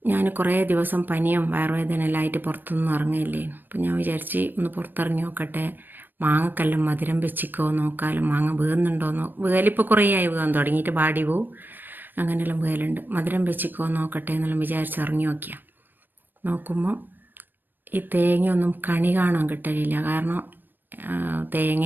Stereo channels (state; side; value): late; left; 0.092 ms